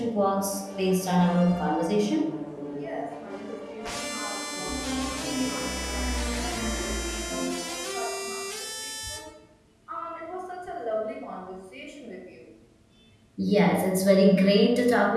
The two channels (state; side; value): identical; both; correlation 1.00